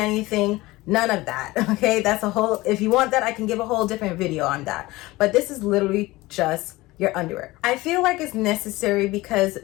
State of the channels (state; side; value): quieter; right; 19.8 dB